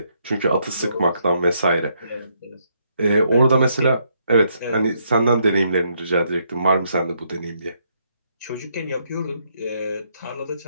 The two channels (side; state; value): both; inverted; correlation -0.75